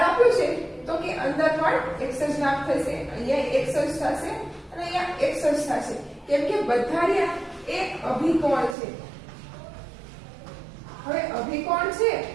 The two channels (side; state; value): left; drops out; at 8.8 s